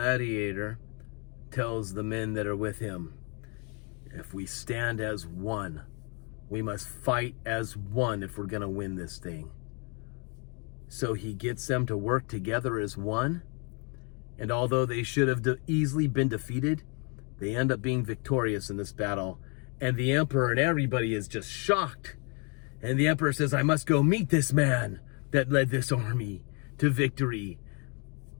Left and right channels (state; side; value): quieter; right; 35.3 dB